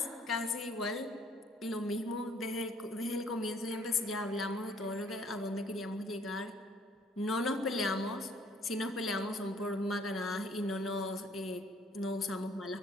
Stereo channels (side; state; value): both; normal; correlation 0.60